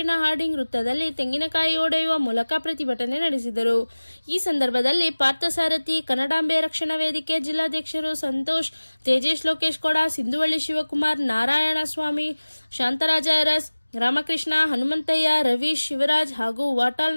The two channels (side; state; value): both; inverted; correlation -1.00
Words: ಹಾರ್ಡಿಂಗ್ ವೃತ್ತದಲ್ಲಿ ತೆಂಗಿನಕಾಯಿ ಒಡೆಯುವ ಮೂಲಕ ಪ್ರತಿಭಟನೆ ನಡೆಸಿದರು. ಈ ಸಂದರ್ಭದಲ್ಲಿ ಪಾರ್ಥಸಾರಥಿ, ಕನ್ನಡಾಂಬೆ ರಕ್ಷಣಾ ವೇದಿಕೆ ಜಿಲ್ಲಾಧ್ಯಕ್ಷರು ಸಂತೋಷ್, ತೇಜೇಶ್, ಲೋಕೇಶ್ ಕೊಡ, ಸಿಂಧುವಳ್ಳಿ ಶಿವಕುಮಾರ್, ನಾರಾಯಣ ಸ್ವಾಮಿ, ಶಾಂತರಾಜ ಅರಸ್, ರಾಮಕೃಷ್ಣ, ಹನುಮಂತಯ್ಯ, ರವೀಶ್, ಶಿವರಾಜ್ ಹಾಗೂ ವಾಟಾಳ್